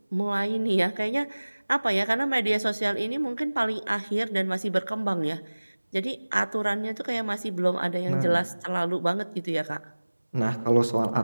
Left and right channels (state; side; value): inverted; both; correlation -1.00